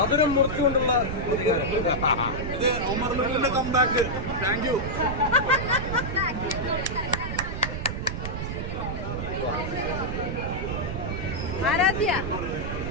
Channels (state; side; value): noise; right; rumble, 4 dB below the sound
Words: മുറിച്ചുകൊണ്ടുള്ള പ്രതികാരം. ഇത് ഉമറിന്റെ കംബാക്ക്. Thank you. ആരാധ്യ